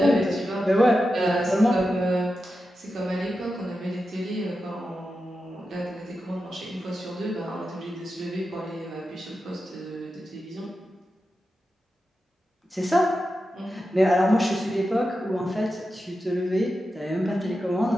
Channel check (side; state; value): both; normal; correlation 0.90